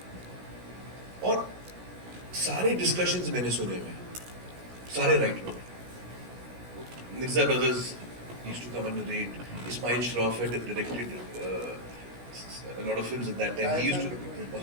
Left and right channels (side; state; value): left; late; 17 ms